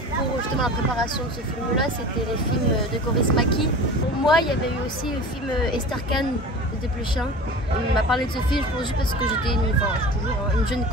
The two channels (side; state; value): both; normal; correlation 0.36